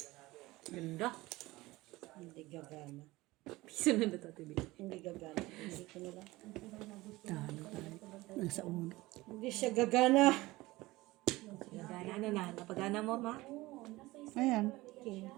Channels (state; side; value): quieter; left; 19.7 dB